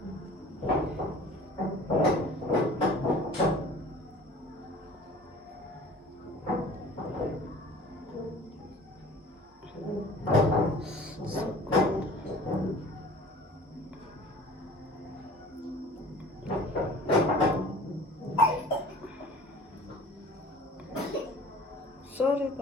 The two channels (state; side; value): normal; both; correlation 0.46